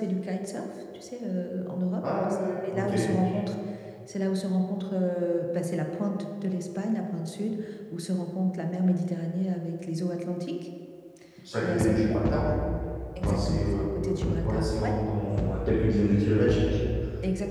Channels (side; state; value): both; identical; correlation 1.00